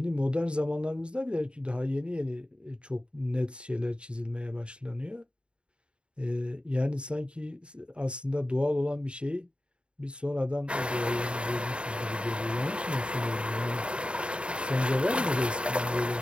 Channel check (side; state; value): left; late; 0.054 ms